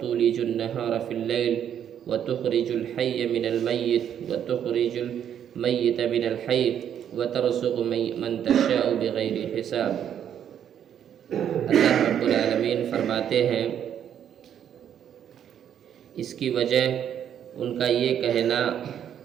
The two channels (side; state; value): left; quieter; 9.4 dB